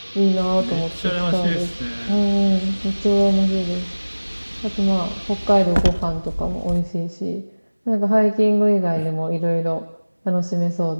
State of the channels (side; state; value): both; inverted; correlation -1.00